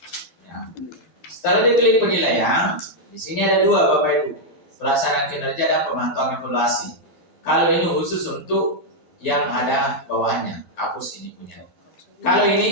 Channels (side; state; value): right; late; 11 ms